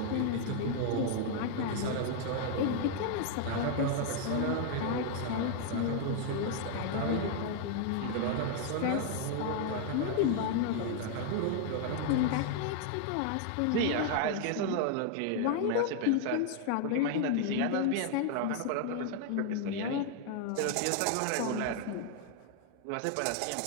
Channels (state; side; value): different; both; correlation 0.00